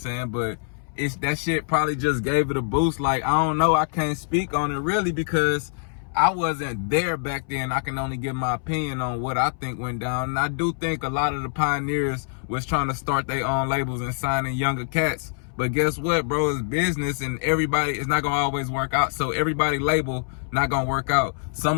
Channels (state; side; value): silent; right; 62 dB below the other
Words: But that shit probably just gave it a boost. Like, I don't know, I can't speak on it really because I wasn't there back then. I can only give my opinion on what I think went down. And I do think a lot of the pioneers was trying to start their own labels and signing younger cats. But guess what, bro? It's business, and everybody, it's not gonna always work out. So everybody label not gonna work out.